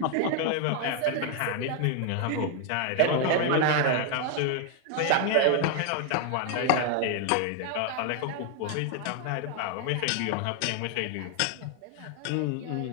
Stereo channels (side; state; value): both; different; correlation 0.00